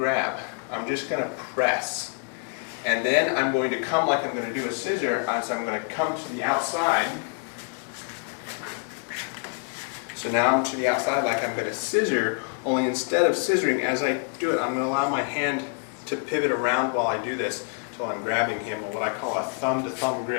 I'm just going to press. And then I'm going to come like I'm going to do a scissor, so I'm going to come to the outside. So now I'm to the outside like I'm going to scissor, only instead of scissoring, as I do it, I'm going to allow my hand to pivot around while I do this until I'm grabbing him with what I call a thumb-to-thumb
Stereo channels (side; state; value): right; quieter; 37.4 dB